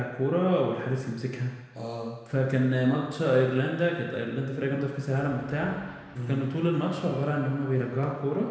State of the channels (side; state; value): both; identical; correlation 1.00